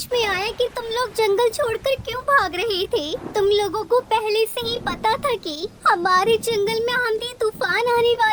में आया कि तुम लोग जंगल छोड़कर क्यों भाग रहे थे। तुम लोगों को पहले से ही पता था कि हमारे जंगल में आंधी तूफान आने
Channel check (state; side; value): identical; both; correlation 1.00